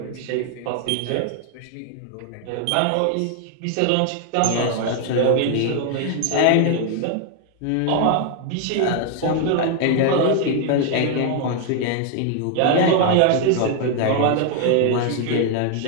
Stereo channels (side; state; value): both; different; correlation 0.00